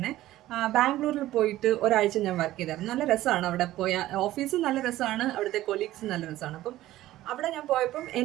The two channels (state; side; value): quieter; left; 15.2 dB